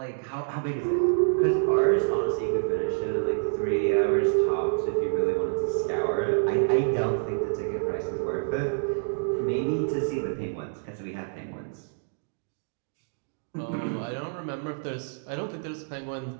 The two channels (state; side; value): silent; left; digital silence